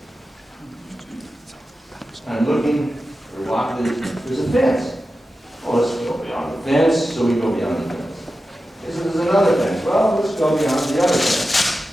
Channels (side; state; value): both; normal; correlation 0.92